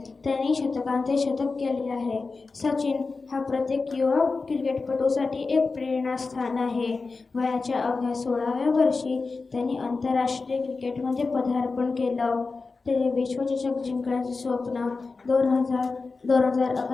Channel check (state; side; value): quieter; right; 4.1 dB